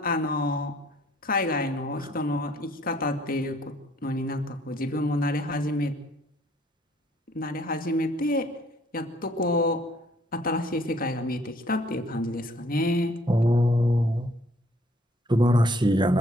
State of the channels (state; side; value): normal; both; correlation 0.61